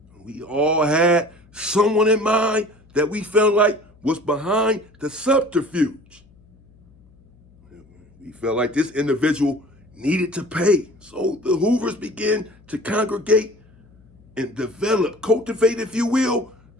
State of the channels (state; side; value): noise; left; hum, 29 dB below the sound